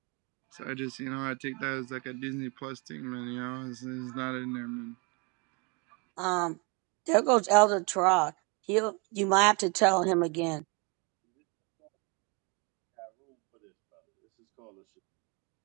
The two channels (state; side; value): quieter; left; 31.6 dB